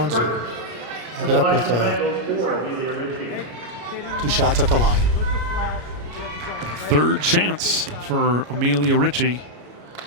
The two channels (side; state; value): left; late; 33 ms